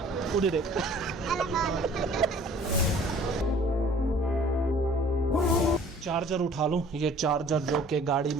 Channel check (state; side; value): normal; both; correlation 0.52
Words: उड़ी देख। चार्जर उठा लूँ, ये चार्जर जो कि गाड़ी